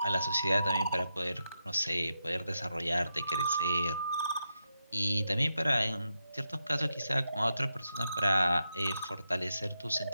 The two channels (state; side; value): inverted; both; correlation -0.85